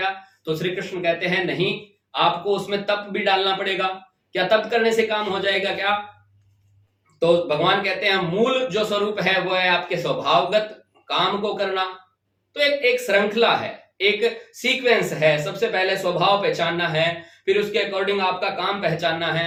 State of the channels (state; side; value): identical; both; correlation 1.00